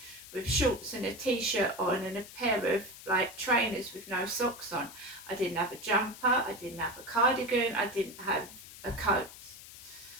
with shorts and a t-shirt on and a pair of trainers with no socks on. I didn't have a jumper, I didn't have a cardigan, I didn't have a coat.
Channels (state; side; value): noise; left; hiss, 16 dB below the sound